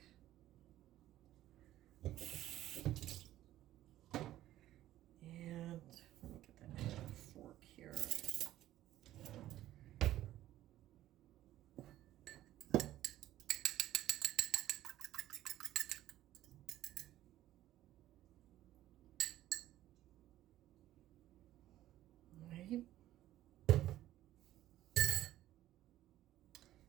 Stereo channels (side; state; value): left; quieter; 14.0 dB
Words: And let me get that fork here.